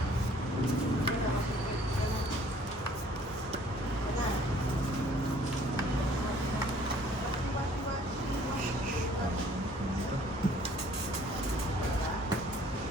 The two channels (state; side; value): normal; both; correlation 0.57